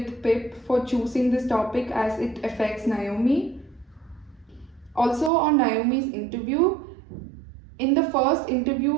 Pip for choosing this topic as it affects Naomi. Also, on Naomi's interview, in the first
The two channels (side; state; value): left; drops out; at 5.3 s